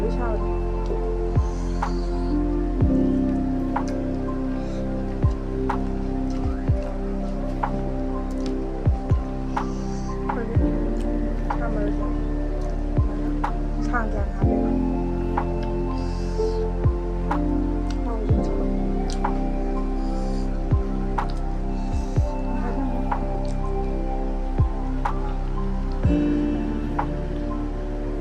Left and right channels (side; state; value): both; identical; correlation 1.00